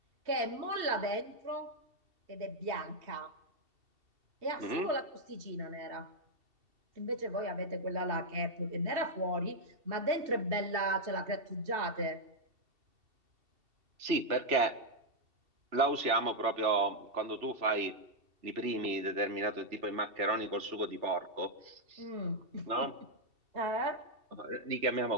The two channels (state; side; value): late; left; 2.7 ms